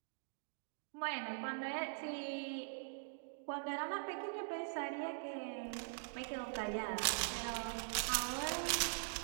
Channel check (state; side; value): silent; left; digital silence